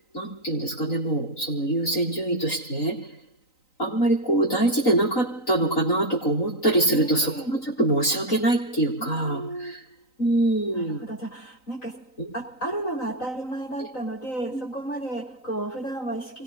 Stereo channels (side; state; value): right; late; 3.9 ms